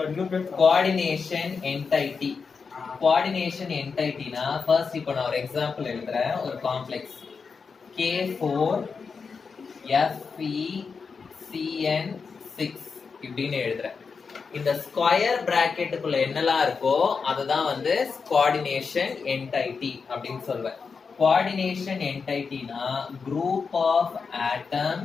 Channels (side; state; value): right; quieter; 5.3 dB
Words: Coordination entity. Coordination என்டைட்டினா ஃபர்ஸ்ட் இப்போ நான் ஒரு எக்ஸாம்பிள் எழுதுறேன். ஒரு காம்ப்ளெக்ஸ் K4FeCN6 இப்படின்னு எழுதுறேன். இந்த ஸ்கொயர் பிராக்கெட்டுக்குள்ள என்னெல்லாம் இருக்கோ அதுதான் வந்து கோஆர்டினேஷன் என்டைட்டி அப்படின்னு சொல்வேன். கோஆர்டினேஷன் என்டைட்டினா group of